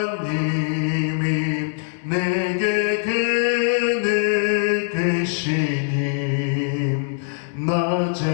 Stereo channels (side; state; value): right; silent; digital silence